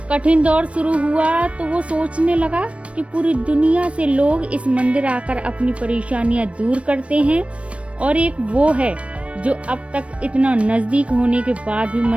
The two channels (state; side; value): late; left; 0.062 ms